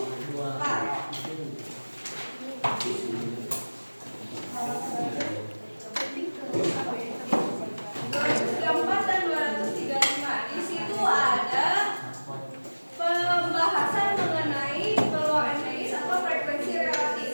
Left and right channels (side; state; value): both; inverted; correlation -1.00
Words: Dan 235. Di situ ada pembahasan mengenai peluang empiris atau frekuensi